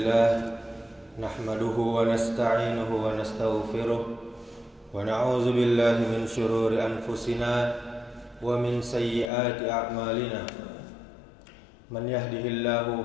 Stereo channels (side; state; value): right; drops out; at 9.3 s